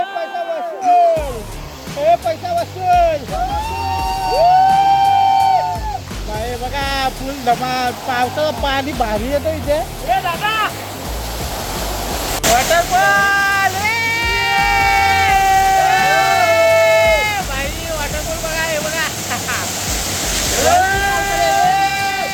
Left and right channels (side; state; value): both; identical; correlation 1.00